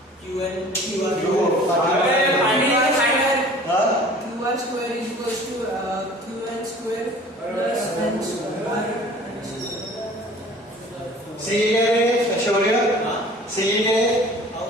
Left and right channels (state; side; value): normal; both; correlation 0.47